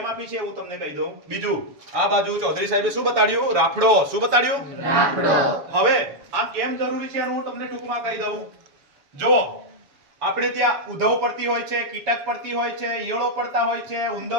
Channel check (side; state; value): left; late; 7.1 ms